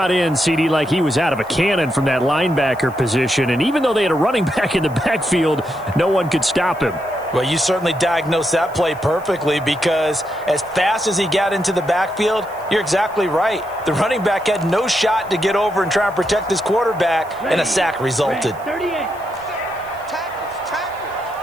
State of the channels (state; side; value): noise; left; hiss, 26 dB below the sound